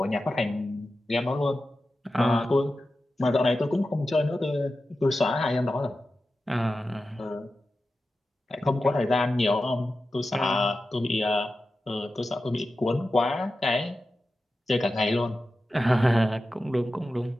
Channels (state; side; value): normal; both; correlation 0.92